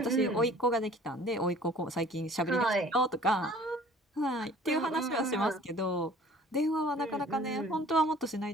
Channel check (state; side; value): normal; both; correlation 0.50